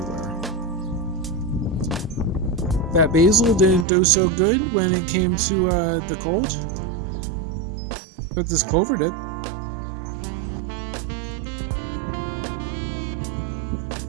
That basil didn't do so good when it came to the cold, but this clover did.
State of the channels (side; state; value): left; drops out; at 3.9 s